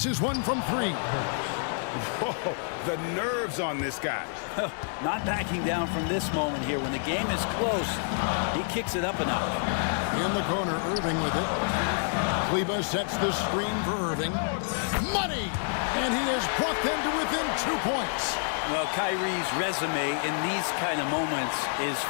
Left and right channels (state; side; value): silent; right; 59 dB below the other